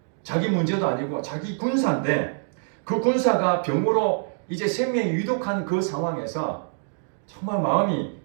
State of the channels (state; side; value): silent; left; digital silence